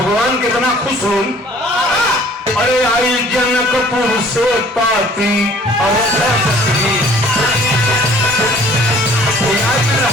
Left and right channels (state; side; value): normal; both; correlation 0.54